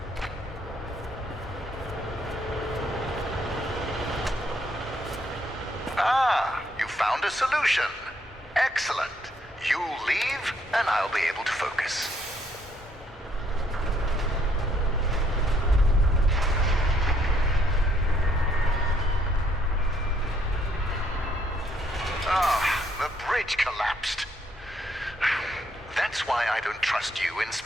Ah, you found a solution. Excellent. You leave, and I'll be able to focus. The bridge collapsed. That's why I don't trust you,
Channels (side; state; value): both; normal; correlation 0.70